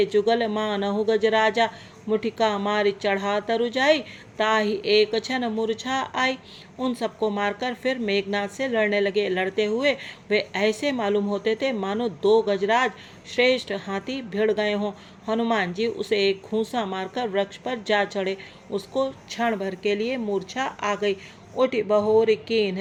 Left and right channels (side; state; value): both; identical; correlation 1.00